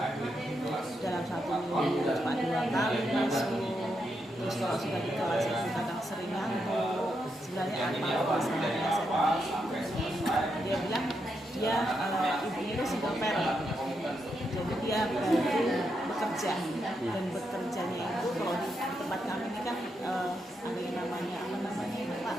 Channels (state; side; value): normal; both; correlation 0.82